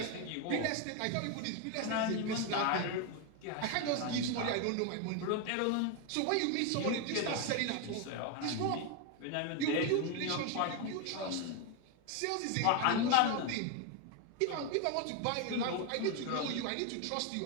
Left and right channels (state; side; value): different; both; correlation 0.01